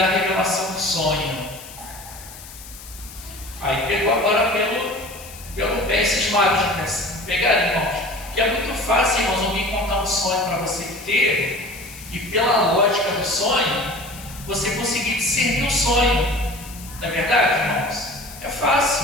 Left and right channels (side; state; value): left; noise; hiss, 16 dB below the sound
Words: a revelação do sonho. Aí pegou agora pelo pé esses magos, pegaram, irmãos. Que é muito fácil, irmãos, alguém contar um sonho para você que teve, e pela lógica do sonho, você conseguir discernir o sonho. Não é verdade, irmãos? É